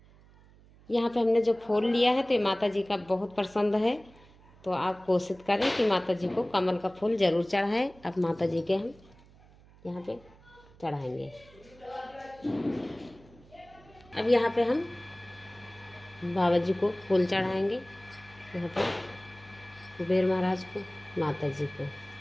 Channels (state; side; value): noise; right; hum, 25 dB below the sound